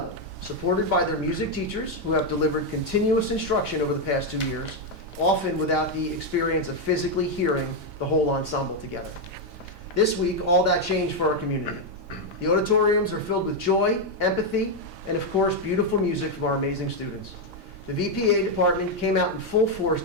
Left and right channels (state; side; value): normal; both; correlation 0.02